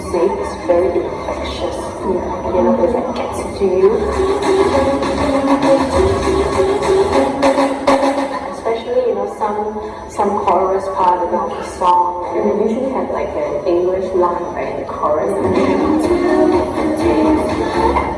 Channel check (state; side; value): identical; both; correlation 1.00